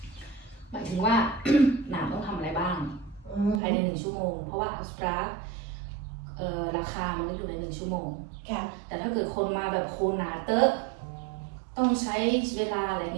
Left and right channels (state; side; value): drops out; left; at 3.6 s